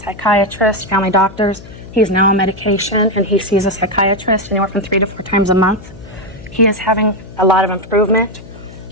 psychiatrists, family doctors. He's now on medication, and he sees a psychiatrist anywhere from 3 to 4 times a month. He is having a lot of improvement,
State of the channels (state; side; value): noise; left; hum, 18 dB below the sound